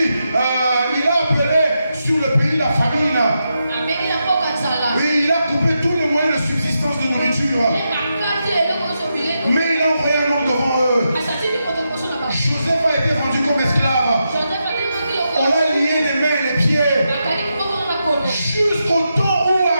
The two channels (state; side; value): inverted; both; correlation -0.85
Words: il a appelé sur le pays la famine. Oui, il a coupé tous les moyens de subsistance de nourriture. Mais il a envoyé un homme devant eux. Joseph a été vendu comme esclave. On l'a lié les mains et les pieds. Jusqu'au temps où